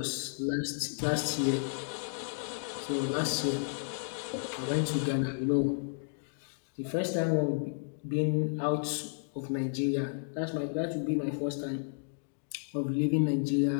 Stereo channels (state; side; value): silent; right; digital silence